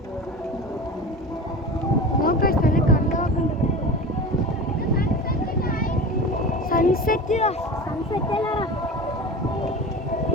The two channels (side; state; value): both; normal; correlation 0.32